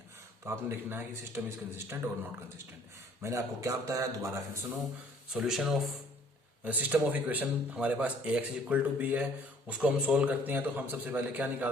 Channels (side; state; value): both; normal; correlation 0.57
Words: तो आपने लिखना है कि सिस्टम इज कंसिस्टेंट और नॉट कंसिस्टेंट। मैंने आपको क्या बताया, दोबारा फिर सुनो। Solution of system of equation हमारे पास ए एक्स इक्वल टू बी है, उसको हम सोल्व करते हैं तो हम सबसे पहले क्या